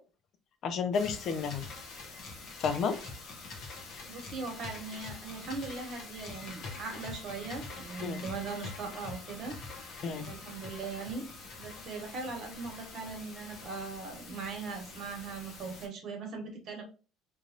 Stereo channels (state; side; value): normal; both; correlation 0.47